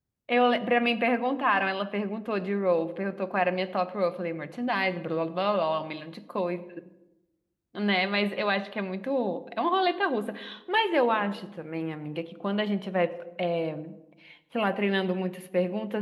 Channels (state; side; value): identical; both; correlation 1.00